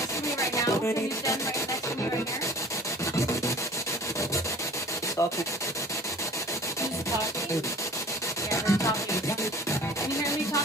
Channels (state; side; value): normal; both; correlation 0.45